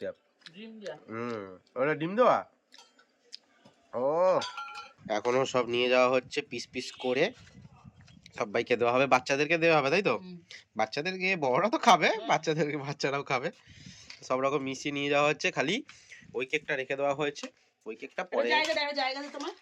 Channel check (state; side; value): identical; both; correlation 1.00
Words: ওটা ডিম দেওয়া। ও এখনো সব নিয়ে যাওয়া হচ্ছে পিস পিস করে, সবাইকে দেওয়া হবে, বাচ্চাদেরকে দেওয়া হবে, তাই তো? বাচ্চাদেরকে, বড়রা তো খাবে, বাচ্চাদেরকে বাচ্চারাও খাবে, সব রকম মিশিয়ে নিয়ে যাওয়া হচ্ছে। খালি ওই কেকটা রেখে দেওয়া হয়েছে, ওই কেকটা পরে।